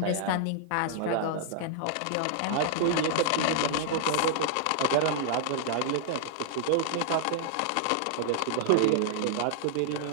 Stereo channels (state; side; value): different; both; correlation -0.01